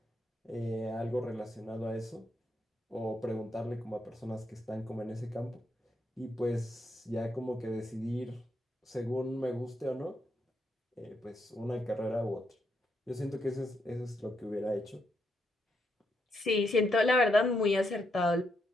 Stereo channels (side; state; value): both; normal; correlation 0.79